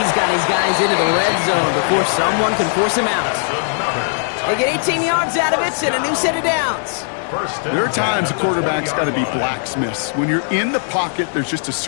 got his guys into the red zone before someone can force him out. They get 18 yards out of it and a new set of downs. There are times a quarterback's got to be blacksmiths. When you're in the pocket, there's just a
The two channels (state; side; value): silent; right; digital silence